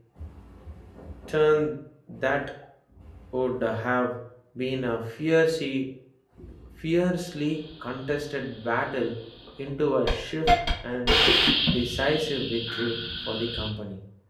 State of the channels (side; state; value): both; identical; correlation 1.00